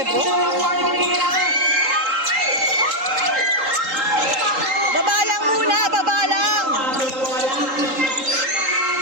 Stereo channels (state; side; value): late; left; 3.8 ms